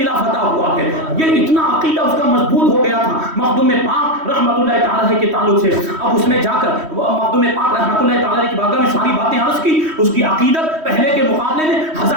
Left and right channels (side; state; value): left; late; 3.1 ms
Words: فتح ہوا ہے۔ یہ اتنا عقیدہ اس کا مضبوط ہو گیا تھا مخدوم پاک رحمت اللہ تعالی کے تعلق سے۔ اب اس نے جا کر مخدوم پاک رحمت اللہ تعالی کی بارگاہ میں ساری باتیں عرض کی، اس کی عقیدت پہلے کے مقابلے میں